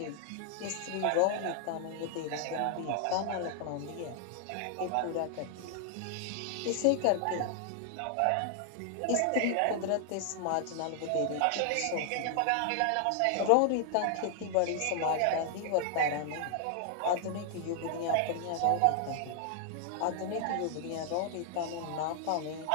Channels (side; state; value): both; different; correlation 0.00